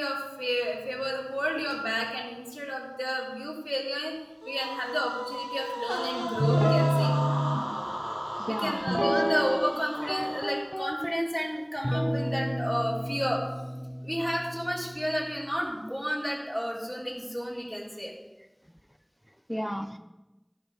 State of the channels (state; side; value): identical; both; correlation 1.00